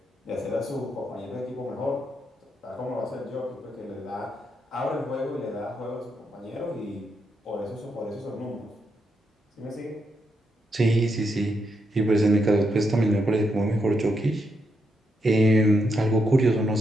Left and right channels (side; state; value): both; normal; correlation 0.80